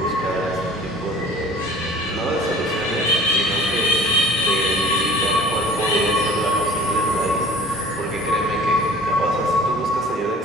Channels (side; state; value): both; normal; correlation 0.46